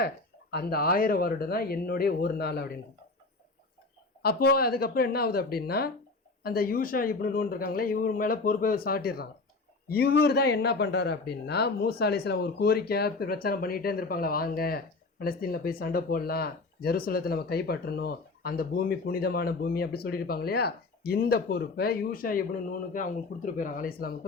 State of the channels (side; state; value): right; quieter; 3.6 dB